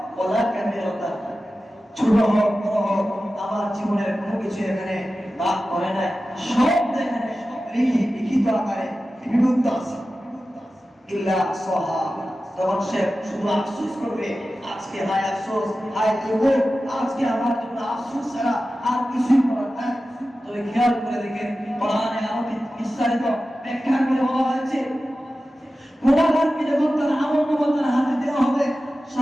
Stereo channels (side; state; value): both; normal; correlation 0.94